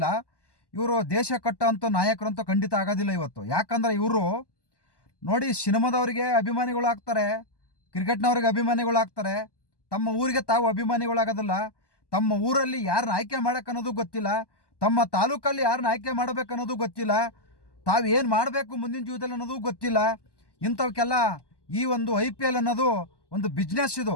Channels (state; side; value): late; right; 1.1 ms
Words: ಇವರು ದೇಶ ಕಟ್ಟೋಂಥ ನಾಯಕರಂತೂ ಖಂಡಿತ ಆಗೋದಿಲ್ಲ ಇವತ್ತು. ಯಾಕಂದರೆ ಇವರು ನೋಡಿ, ಸಿನಿಮಾದವರಿಗೆ ಅಭಿಮಾನಿಗಳಾಗ್ತಾರೆ, ಕ್ರಿಕೆಟ್ನವ್ರಿಗೆ ಅಭಿಮಾನಿಗಳಾಗ್ತಾರೆ, ತಮ್ಮ ಊರಿಗೆ ತಾವು ಅಭಿಮಾನಿಗಳಾಗೋದಿಲ್ಲ. ತಮ್ಮ ಊರಲ್ಲಿ ಯಾರನ್ನ ಆಯ್ಕೆ ಮಾಡೋಕ್ಕನ್ನೋದು ಗೊತ್ತಿಲ್ಲ, ತಮ್ಮ ತಾಲೂಕಲ್ಲಿ ಯಾರನ್ನ ಆಯ್ಕೆ ಮಾಡಬೇಕನ್ನೋದು ಗೊತ್ತಿಲ್ಲ, ತಾವು ಏನು ಮಾಡಬೇಕು ಮುಂದಿನ ಜೀವನದಲ್ಲಿ ಅನ್ನೋದು ಗೊತ್ತಿಲ್ಲ. ಇಂಥವಕ್ಕೆಲ್ಲ ಈ ಒಂದು IPL ಅನ್ನೋದು ಒಂದು ಬಿಸ್ನೆಸ್.